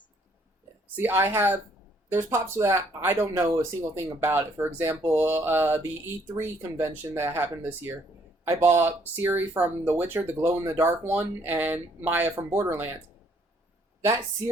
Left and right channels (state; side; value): normal; both; correlation 0.66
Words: See, there's pops that I don't know a single thing about it. For example, the E3 convention that happened this year, I bought Ciri from The Witcher, the glow-in-the-dark one, and Maya from Borderlands. That